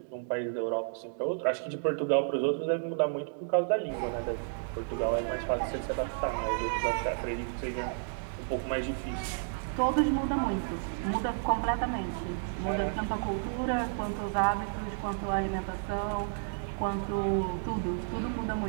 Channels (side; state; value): left; silent; digital silence